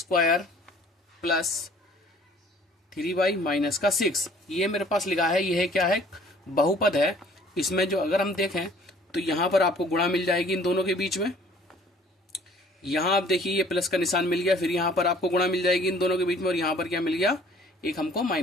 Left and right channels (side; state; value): both; normal; correlation 0.54